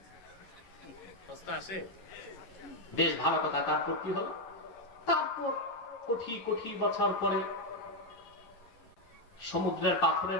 বেশ ভালো কথা। তারপর কি হলো? তারপর কোটি কোটি বছর পরে সমুদ্রের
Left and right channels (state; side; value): late; right; 11 ms